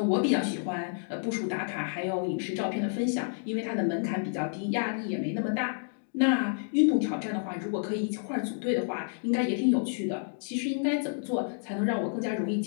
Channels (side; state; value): right; silent; digital silence